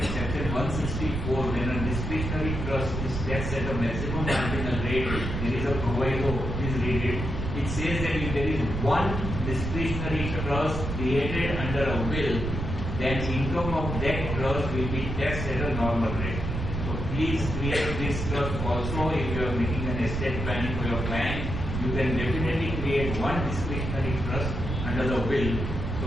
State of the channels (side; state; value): right; noise; rumble, 3 dB below the sound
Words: Section 164, when a discretionary trust is taxed at a maximum marginal rate, there is a proviso, please read it. It says that if there is one discretionary trust created under a will, then income of that trust will be taxed at a normal rate. So please create this trust also. If you are making an estate planning for your client, you can definitely create one discretionary trust under the will so